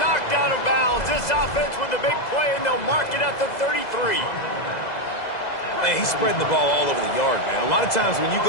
knocked out of bounds. This offense with a big play, and they'll mark it at the 33. Man, he's spreading the ball all over the yard, man. A lot of times when you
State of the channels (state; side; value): late; right; 2.0 ms